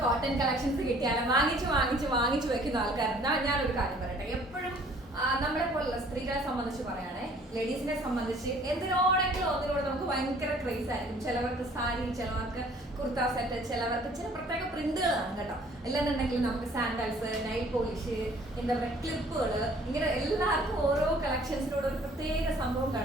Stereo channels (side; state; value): both; normal; correlation 0.56